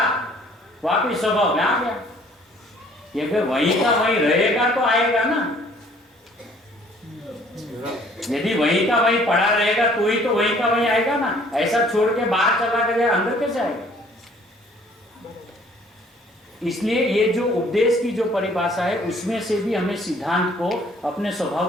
वापिस स्वभाव में आ गया। ये फिर वहीं का वहीं रहेगा तो आएगा ना। यदि वहीं का वहीं पड़ा रहेगा तो ही तो वहीं का वहीं आएगा ना। ऐसा छोड़ के बाहर चला गया, अंदर कैसे आएगा? इसलिए ये जो उपदेश की जो परिभाषा है, उसमें से भी हमें सिद्धांत को, अपने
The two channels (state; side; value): normal; both; correlation 0.57